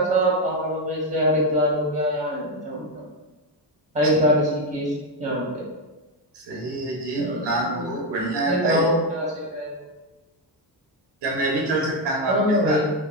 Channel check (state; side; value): normal; both; correlation 0.05